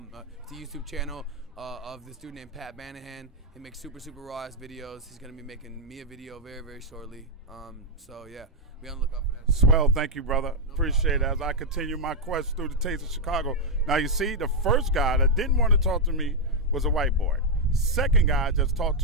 Of this dude named Pat Banahan. He makes super, super raw-ass videos. He's gonna be making me a video very, very shortly. So yeah, be on the lookout for that. Swell, thank you, brother. Appreciate it as I continue my quest through the taste of Chicago. Now, you see, the first guy that didn't want to talk to me was a white boy. Second guy I just talked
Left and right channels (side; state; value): both; normal; correlation -0.01